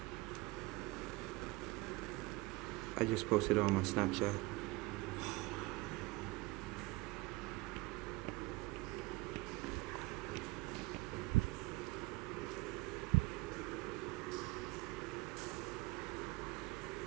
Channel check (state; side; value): quieter; left; 22.4 dB